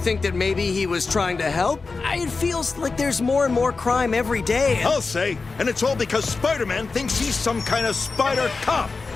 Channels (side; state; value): right; quieter; 4.2 dB